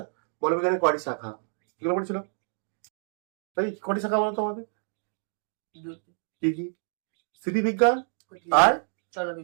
বলবিজ্ঞানের কয়টি শাখা, এগুলো পড়েছিলাম। তাই কয়টি শাখা বলতো আমাদের? কি কি? স্থিতিবিজ্ঞান আর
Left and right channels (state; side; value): silent; left; 59 dB below the other